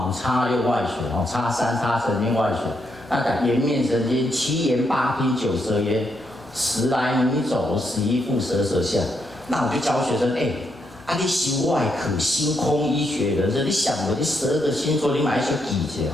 5擦6外旋哦，擦3擦神经外旋。那讲颜面神经，7言8听9舌咽，10来米走11腹舌舌下。那我就教学生你修外科星空医学人生，你想过你12个星座，你买一些记者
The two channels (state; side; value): normal; both; correlation 0.79